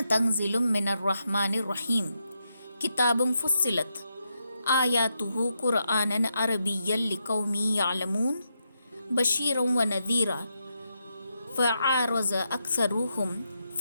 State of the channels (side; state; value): both; inverted; correlation -0.83